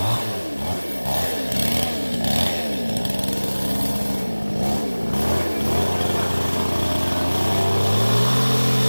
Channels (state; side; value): inverted; both; correlation -1.00